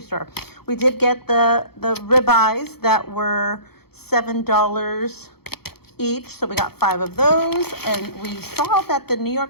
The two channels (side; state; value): right; late; 0.96 ms